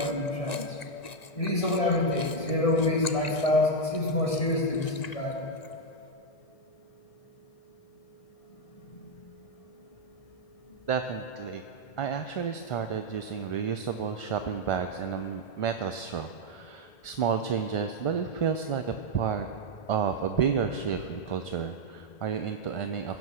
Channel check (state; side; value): late; right; 1.9 ms